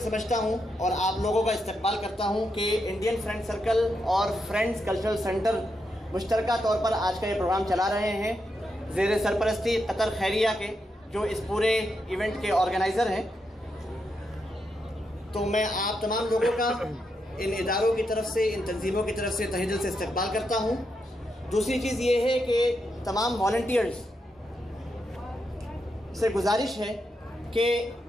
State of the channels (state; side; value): normal; both; correlation 0.83